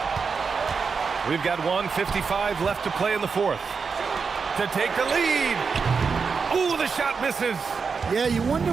We've got 1:55 left to play in the fourth. To take the lead. Ooh, the shot misses. Yeah, you wonder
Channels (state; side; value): quieter; left; 5.3 dB